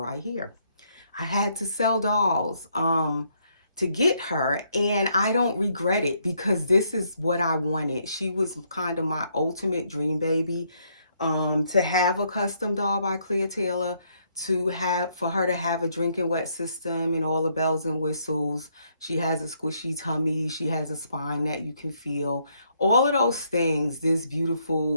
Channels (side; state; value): both; inverted; correlation -0.72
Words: right here. I had to sell dolls to get her, and I don't regret it because this is what I wanted. She was kind of my ultimate dream baby, to have a custom doll by Clea Taylor, for her to have a drinking wet system and all the bells and whistles. She has a squishy tummy, she has a spine that you can feel. All of those things, this